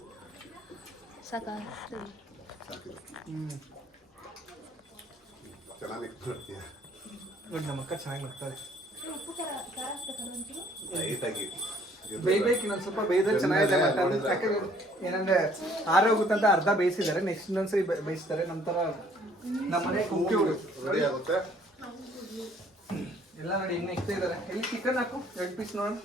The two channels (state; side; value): normal; both; correlation 0.60